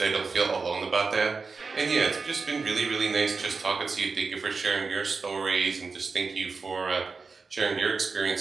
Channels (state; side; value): quieter; left; 4.5 dB